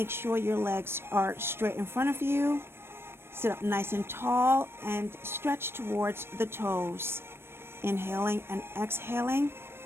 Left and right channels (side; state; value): left; late; 0.12 ms